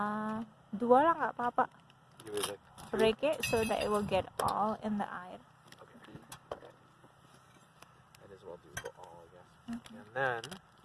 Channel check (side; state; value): both; identical; correlation 1.00